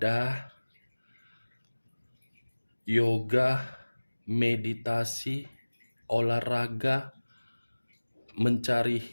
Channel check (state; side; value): inverted; both; correlation -1.00